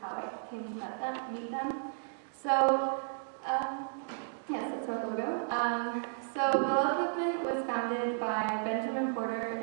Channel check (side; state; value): left; silent; digital silence